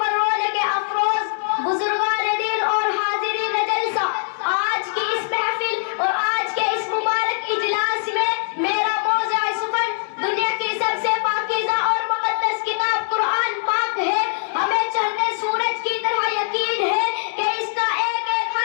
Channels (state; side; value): silent; right; 64 dB below the other